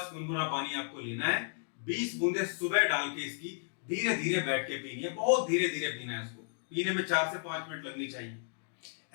गुनगुना पानी आपको लेना है, 20 बूंदे सुबह डाल के इसकी धीरे धीरे बैठ के पीनी है, बहुत धीरे धीरे पीना है। इसको पीने में 4 से 5 मिनट लगनी चाहिए।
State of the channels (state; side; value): silent; right; digital silence